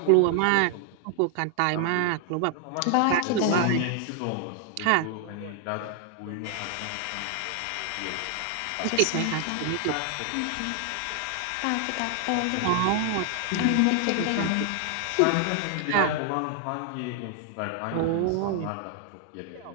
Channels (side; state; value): both; different; correlation 0.00